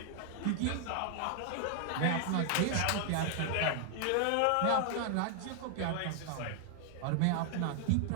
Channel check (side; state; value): both; different; correlation 0.00